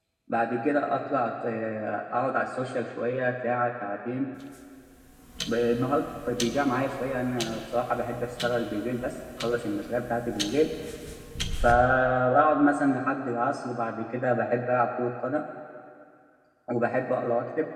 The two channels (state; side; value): identical; both; correlation 1.00